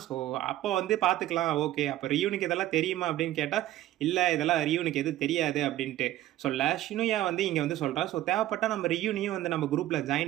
ஸோ அப்போ வந்து பார்த்துக்கலாம், ஓகே அப்போ ரியூனுக்கு இதெல்லாம் தெரியுமா அப்படின்னு கேட்டால், இல்லை இதெல்லாம் ரியூனுக்கு எதுவும் தெரியாது அப்படின்ட்டு சொல்ல, ஷினுயா வந்து இங்கே வந்து சொல்கிறா, ஸோ தேவைப்பட்டால் நம்ம ரியூனையும் வந்து நம்ம குரூப்பில்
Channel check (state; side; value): quieter; left; 14.4 dB